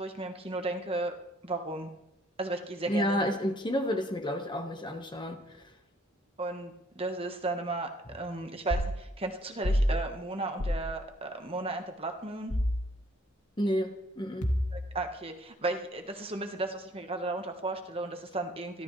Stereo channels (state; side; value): normal; both; correlation 0.62